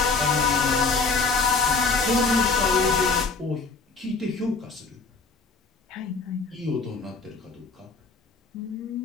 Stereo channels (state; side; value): quieter; right; 4.2 dB